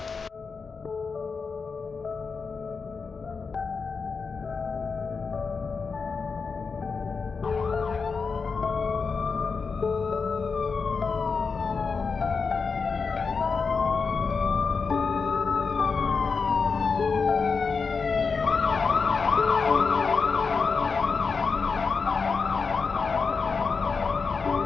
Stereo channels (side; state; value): right; quieter; 5.0 dB